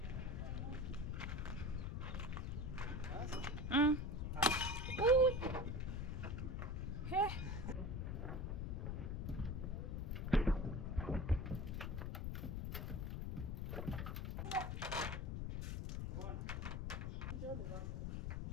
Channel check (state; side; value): noise; left; rumble, 2 dB below the sound